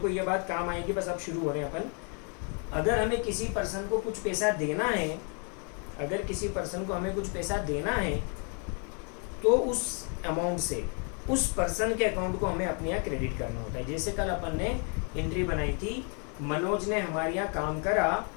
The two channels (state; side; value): quieter; right; 39.0 dB